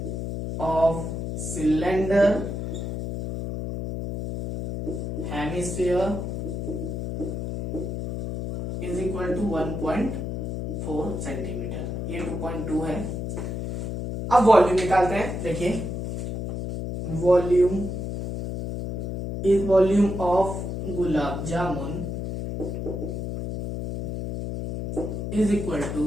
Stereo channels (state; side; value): noise; left; hum, 4 dB below the sound